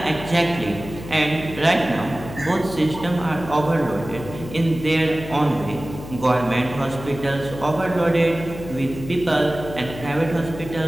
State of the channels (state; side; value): noise; left; hum, 12 dB below the sound